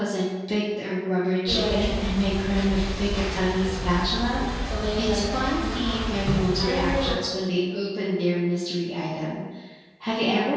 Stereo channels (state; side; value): identical; both; correlation 1.00